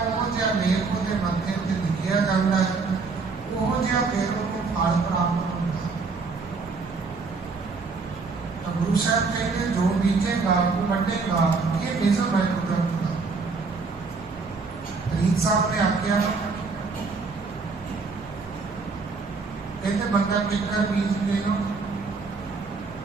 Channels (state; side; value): quieter; left; 4.4 dB